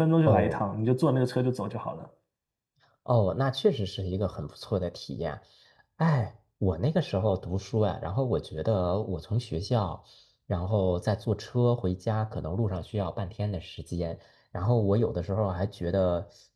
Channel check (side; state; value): both; identical; correlation 1.00